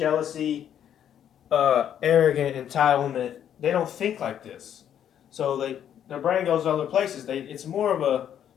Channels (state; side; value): quieter; right; 9.7 dB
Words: arrogant entitlement. They don't think like this. So their brain goes other places. It's more of a,